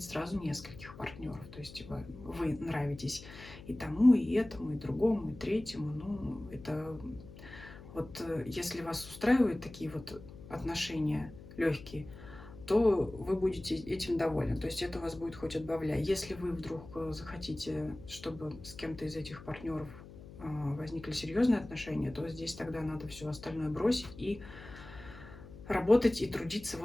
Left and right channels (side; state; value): left; noise; hum, 16 dB below the sound